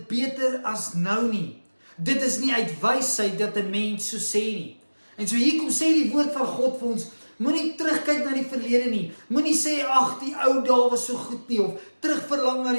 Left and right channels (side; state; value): both; inverted; correlation -1.00